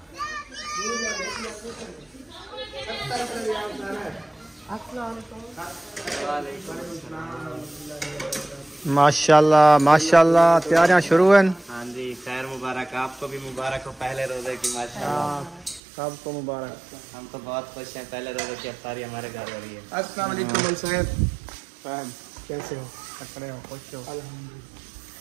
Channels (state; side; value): drops out; left; at 15.8 s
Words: माशाल्लाह माशाल्लाह तैयारियां शुरू हैं। हाँ जी खैर मुबारक, आपको भी मुबारक हो पहले रोजे की। माशाल्लाह सबको मुबारक। हम तो बहुत खुश हैं, पहले रोजे की इफ्तारी हमारे घर हो रही है। अस्सलाम वालेकुम साहब, कैसे हो? खड़े हो? खुश हो? अल्हम्दुलिल्लाह।